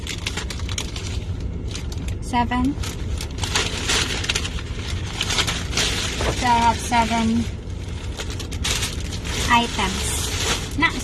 7. So I have 7 items. Not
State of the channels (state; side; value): identical; both; correlation 1.00